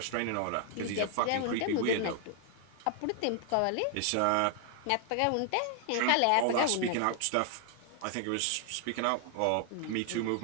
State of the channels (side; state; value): both; different; correlation 0.00